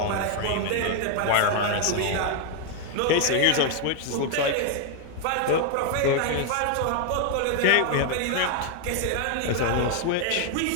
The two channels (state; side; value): different; both; correlation 0.00